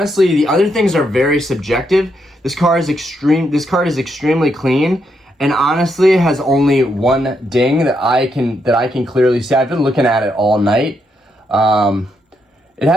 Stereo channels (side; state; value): both; normal; correlation 0.79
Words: the other things are very subjective. This card is extremely clean, and honestly has only one ding that I can clearly see. I've been looking at it all night. It